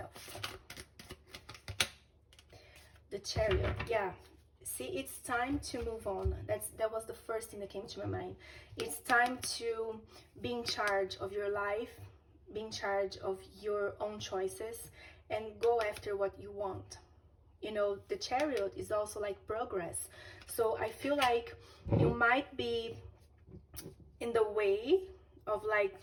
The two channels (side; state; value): both; identical; correlation 1.00